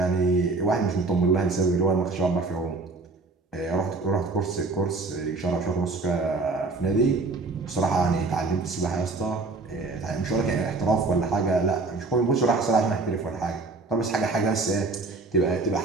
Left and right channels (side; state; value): left; quieter; 3.6 dB